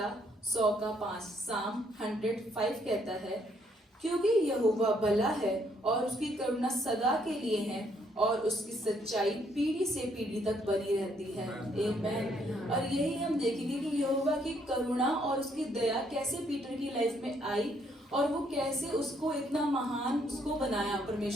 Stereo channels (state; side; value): normal; both; correlation 0.70